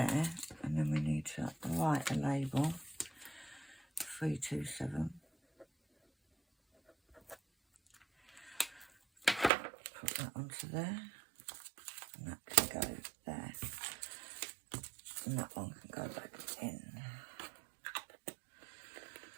and then we need to write a label. 327. Put that onto there, and that can go there, and that one can go back in.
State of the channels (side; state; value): left; drops out; at 9.5 s